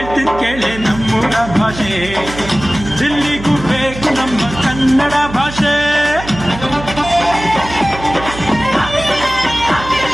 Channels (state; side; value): noise; right; hum, 12 dB below the sound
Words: ಕೇಳಿ ನಮ್ಮೂರ ಭಾಷೆ ದಿಲ್ಲಿಗೂ ಬೇಕು ನಮ್ಮ ಕನ್ನಡ ಭಾಷೆ